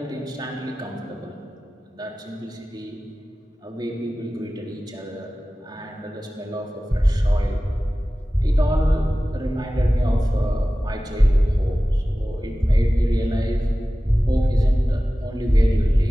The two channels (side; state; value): both; normal; correlation 0.96